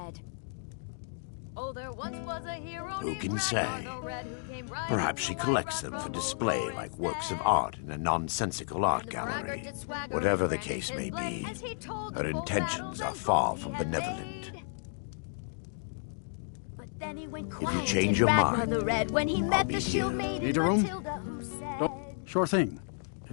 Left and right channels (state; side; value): silent; right; digital silence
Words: Oh, there once was a hero Who can say? Perhaps she collects them for display like works of art in a nonsensical art gallery. Whatever the case may be, her intentions are far from benevolent. If you change your mind, when he met the shield maiden Need a room? Matilda, who said, Sure thing.